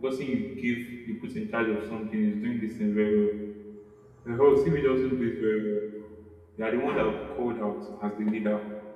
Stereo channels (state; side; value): identical; both; correlation 1.00